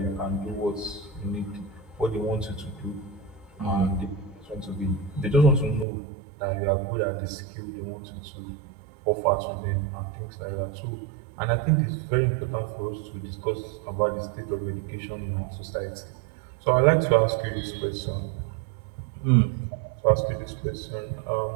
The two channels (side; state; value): left; drops out; at 5.9 s